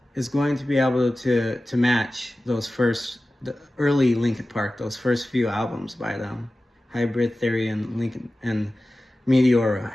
is going to be able to match the early Linkin Park, those first few albums by them. Hybrid Theory and Lincoln and Meteora.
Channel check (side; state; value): both; normal; correlation 0.95